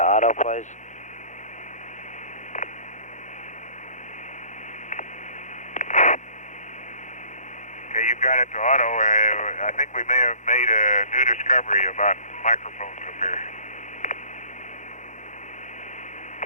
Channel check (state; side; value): late; right; 0.35 ms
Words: auto, please. Okay, you've got it to auto. I think we may have made a new discovery about microphones up here.